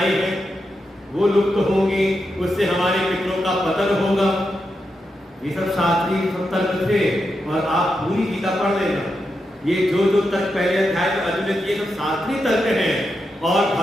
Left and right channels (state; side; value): normal; both; correlation 0.86